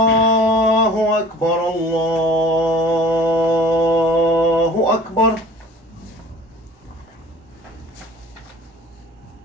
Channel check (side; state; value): both; normal; correlation 0.47